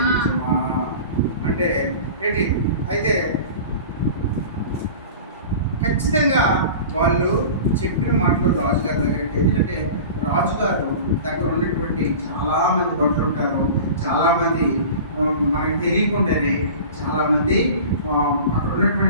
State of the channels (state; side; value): inverted; both; correlation -0.37